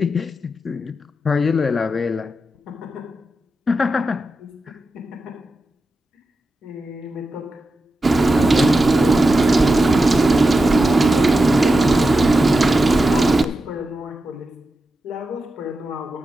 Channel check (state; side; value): normal; both; correlation 0.90